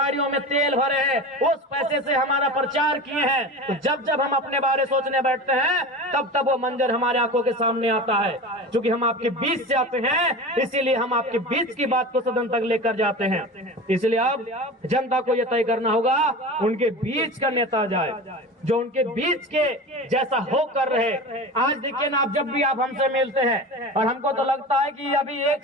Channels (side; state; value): both; normal; correlation 0.30